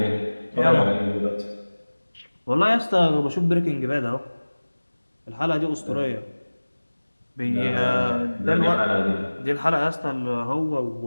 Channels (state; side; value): inverted; both; correlation -1.00